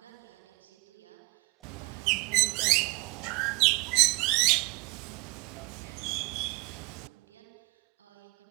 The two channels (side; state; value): left; quieter; 28.0 dB